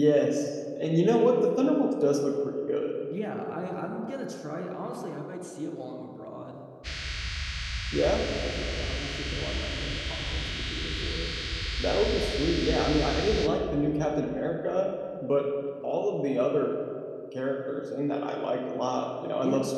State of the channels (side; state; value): both; identical; correlation 1.00